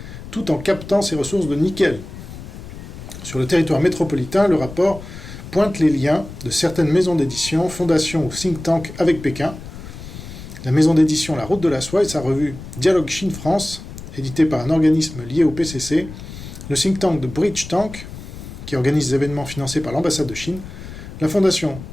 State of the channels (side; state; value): left; noise; rumble, 13 dB below the sound